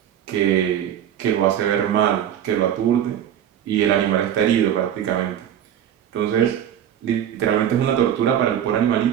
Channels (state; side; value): quieter; left; 10.1 dB